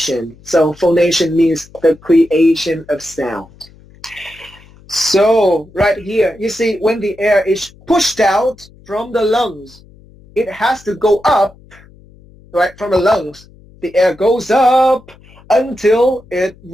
So phonation means the creation of sound. So right here, you see when the air is pushed out from the lungs, it has to go up, right, from the lungs. The air goes up until it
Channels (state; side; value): noise; left; hum, 25 dB below the sound